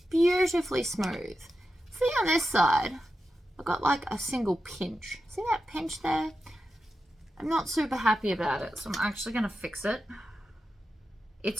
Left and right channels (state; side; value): normal; both; correlation 0.90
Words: beautifully smooth. See on this side, I've got like a single pinch. See that pinch there? I'm not super happy about it, so I'm actually going to fix it.